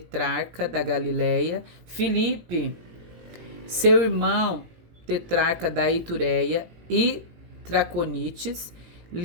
da Galileia. Filipe, seu irmão, tetrarca da Itureia e Traconites.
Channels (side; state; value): left; late; 17 ms